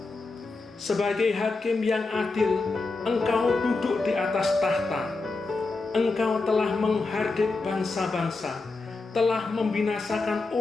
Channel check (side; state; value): right; quieter; 3.7 dB